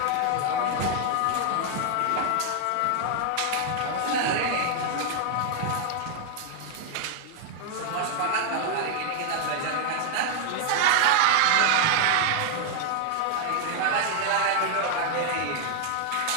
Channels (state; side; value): different; both; correlation 0.00